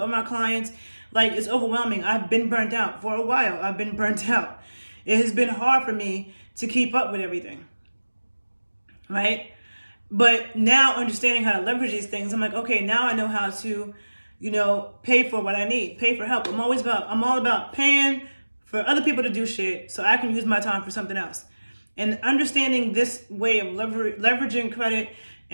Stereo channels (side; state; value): both; inverted; correlation -1.00